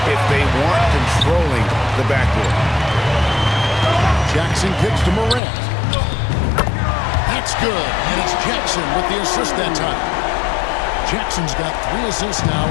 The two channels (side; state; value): right; drops out; at 5.4 s